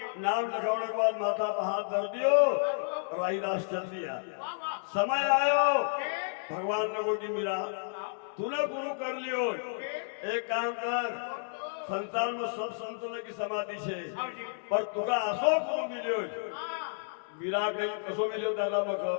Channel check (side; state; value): right; silent; digital silence